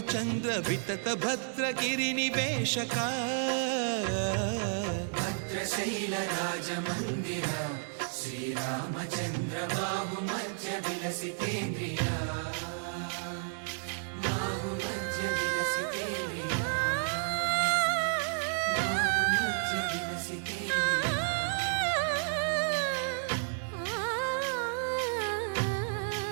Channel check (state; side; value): silent; left; 57 dB below the other